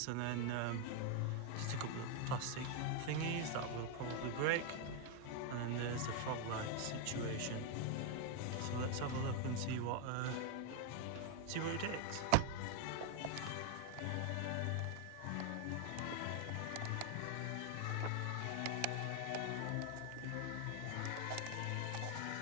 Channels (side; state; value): both; different; correlation 0.01